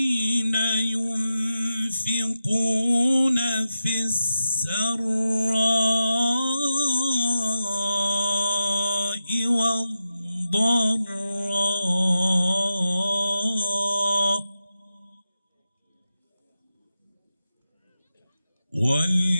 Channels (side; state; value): both; inverted; correlation -0.90